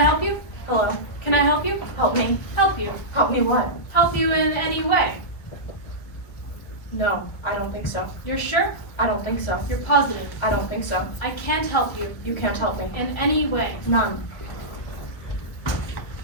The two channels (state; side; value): late; right; 1.4 ms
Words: you? Hello. Can I help you? Help me. Help you. Help me what? Help you in any way. No, I don't think so. You're sure? I don't think so. You're positive. I don't think so. I can't help you You can't help me. in any way. None.